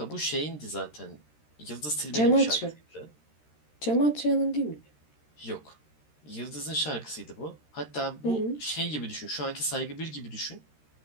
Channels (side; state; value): right; late; 13 ms